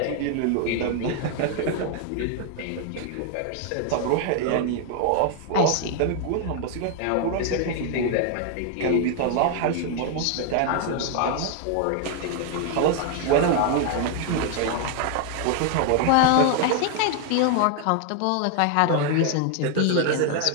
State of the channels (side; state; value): both; different; correlation 0.00